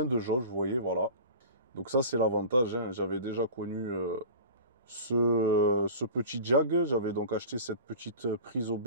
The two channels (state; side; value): inverted; both; correlation -0.36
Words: de jauges, vous voyez, voilà. Donc ça, c'est l'avantage, hein. J'avais déjà connu ce petit jag. J'avais donc acheté cette petite prise